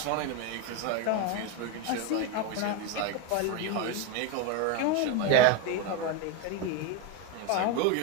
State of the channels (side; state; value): both; different; correlation 0.03